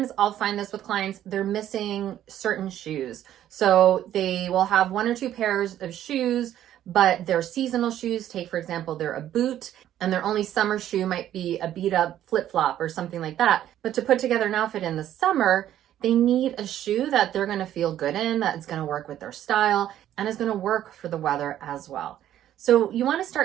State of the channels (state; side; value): quieter; left; 11.8 dB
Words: I'll find this with clients, they're missing certain shoes. So they will have one or two pairs of shoes, but they're seasonal shoes. Take, for example, they're a boot, and their only summer shoe might be a beat up flip-flop or something like that. But to put together an outfit in the summer, they need a shoe that they're going to feel good in, that's going to work with their style, and is going to work for the weather as well. So you want to